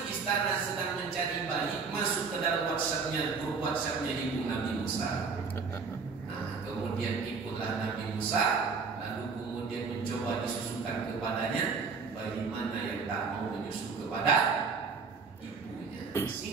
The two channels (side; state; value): left; quieter; 5.0 dB